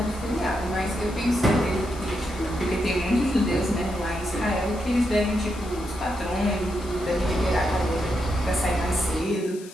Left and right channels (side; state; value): left; noise; hiss, 19 dB below the sound